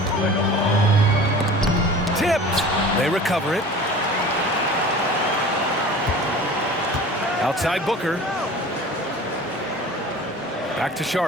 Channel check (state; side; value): normal; both; correlation 0.40